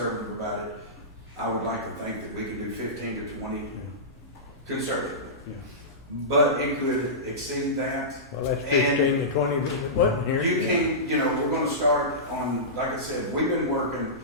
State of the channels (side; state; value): both; normal; correlation -0.18